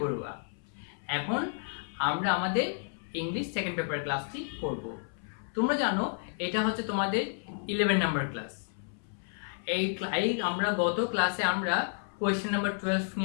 বড়ুয়া। এখন আমরা আমাদের ইংলিশ সেকেন্ড পেপার ক্লাসটি করব। তোমরা জানো এটা হচ্ছে তোমাদের 11 নাম্বার ক্লাস। আমরা গত ক্লাসে আমরা কোয়েশ্চেন নাম্বার 12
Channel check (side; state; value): right; silent; 57 dB below the other